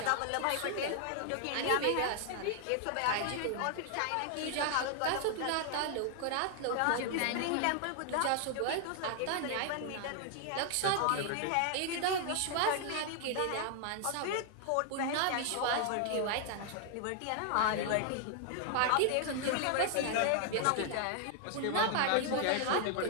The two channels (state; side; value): different; both; correlation 0.00